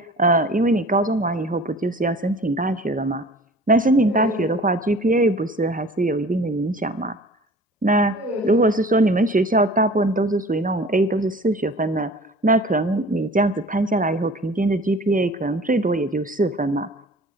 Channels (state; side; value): normal; both; correlation 0.44